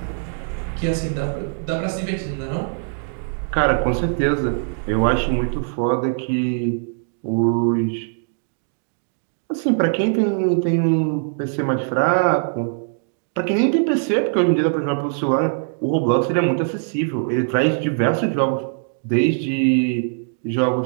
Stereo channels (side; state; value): left; silent; digital silence